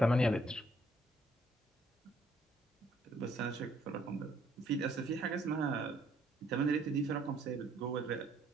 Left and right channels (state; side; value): normal; both; correlation 0.66